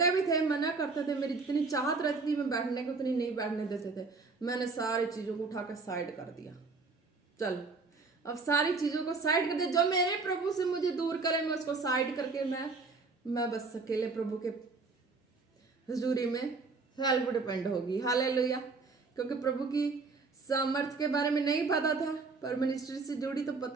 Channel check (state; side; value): quieter; left; 4.1 dB